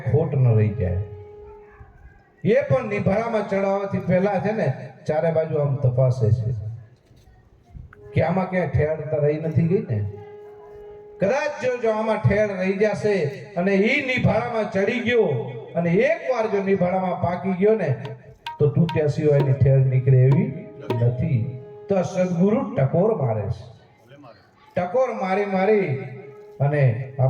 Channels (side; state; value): both; identical; correlation 1.00